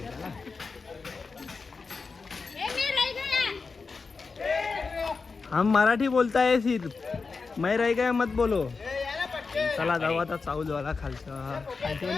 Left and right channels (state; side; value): quieter; right; 4.6 dB